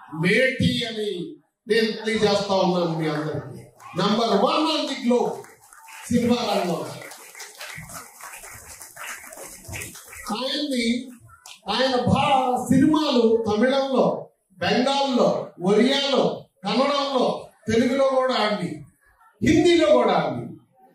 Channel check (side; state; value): both; identical; correlation 1.00